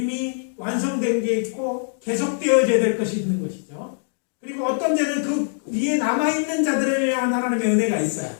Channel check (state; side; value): silent; right; digital silence